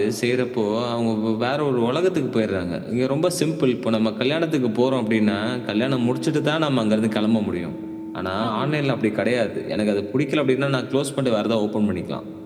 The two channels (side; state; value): both; identical; correlation 1.00